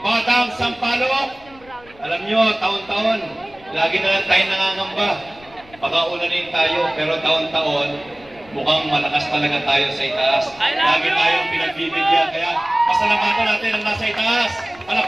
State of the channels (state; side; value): noise; left; rumble, 25 dB below the sound